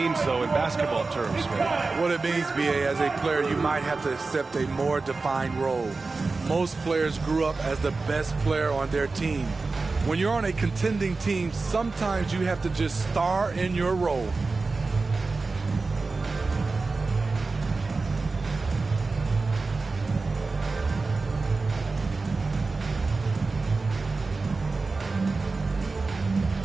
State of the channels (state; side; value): quieter; left; 3.9 dB